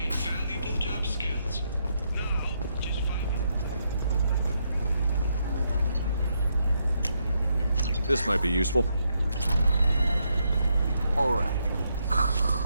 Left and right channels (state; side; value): inverted; both; correlation -0.79